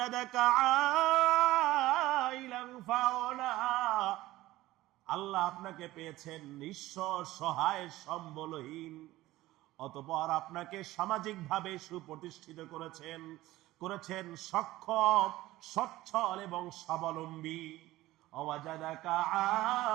عائلا فأغنى, আল্লাহ আপনাকে পেয়েছেন নিঃস্ব সহায় সম্বলহীন, অতঃপর আপনাকে সামাজিকভাবে সুপ্রতিষ্ঠিত করেছেন সক্ষম, সচ্ছল এবং স্বাবলম্বী। ওয়াজাদাকা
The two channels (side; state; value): left; quieter; 17.0 dB